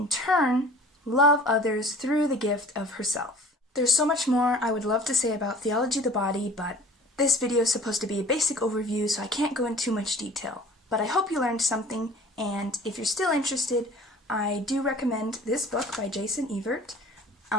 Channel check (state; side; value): normal; both; correlation 0.46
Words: turn, love others through the gift of herself. There's so much more I would love to say about theology of the body, but this video is supposed to be a basic overview, so I can't go into too much detail. But I hope you learned something, and if you're still interested, I do recommend this book by Jason Evert.